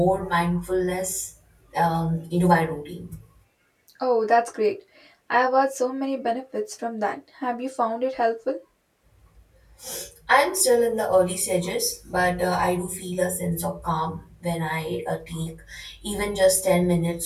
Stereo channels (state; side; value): identical; both; correlation 1.00